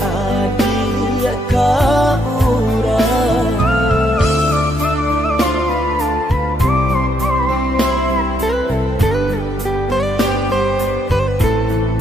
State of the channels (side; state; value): both; normal; correlation 0.75